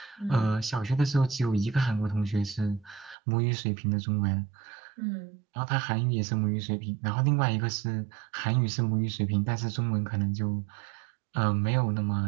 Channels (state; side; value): drops out; left; at 3.2 s